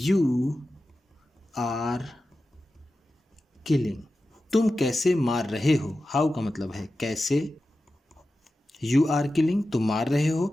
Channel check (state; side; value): normal; both; correlation 0.93